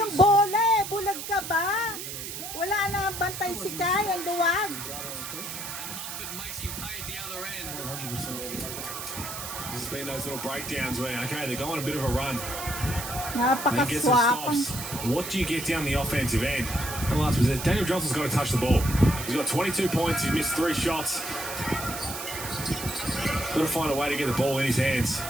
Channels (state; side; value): noise; right; hiss, 7 dB below the sound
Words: Centre. bola eh. Bulag ka ba? Wala na bantay si Kai, ang luwag. And Mumford makes him pay at the other end. 100%. This has been those little breakdowns where, okay, they're going a bit of a run. Then get some Napakaswapang. stops. What do you get down the offensive end? And last was it. Daniel Johnson's got to touch the ball. He's got 22 points. He's missed 3 shots. Got to find a way to get the ball in his hands.